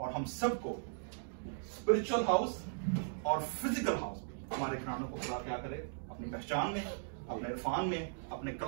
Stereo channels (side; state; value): left; silent; digital silence